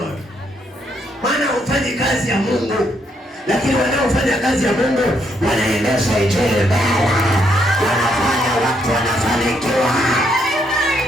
Maana hufanyi kazi ya Mungu. Lakini wanaofanya kazi ya Mungu wanaendesha injili mbele. Wanafanya watu wanafanikiwa.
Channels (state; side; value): normal; both; correlation 0.74